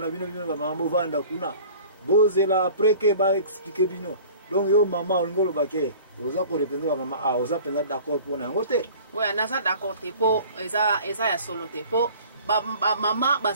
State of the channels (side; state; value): both; inverted; correlation -0.46